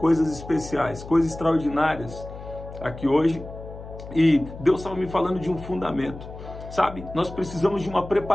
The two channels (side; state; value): left; noise; hum, 13 dB below the sound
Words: especiais, coisas extraordinárias aqui hoje. E Deus estava me falando de um fundamento. Sabe, nós precisamos de uma